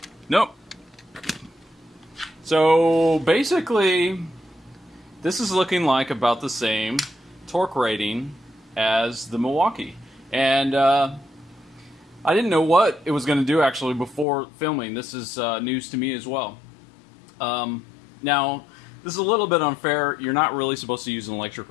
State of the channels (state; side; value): drops out; right; at 14.2 s